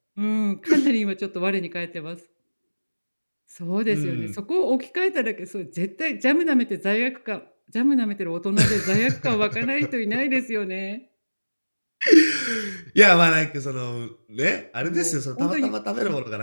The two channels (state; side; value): inverted; both; correlation -1.00